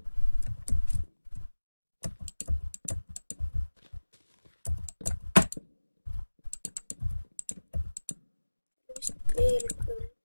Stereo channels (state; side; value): inverted; both; correlation -1.00